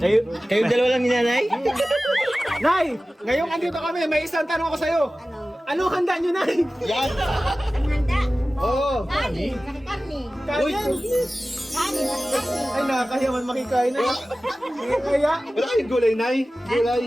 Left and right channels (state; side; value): normal; both; correlation 0.96